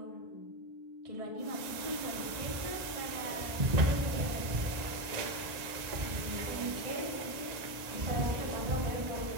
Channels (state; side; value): late; left; 1.8 ms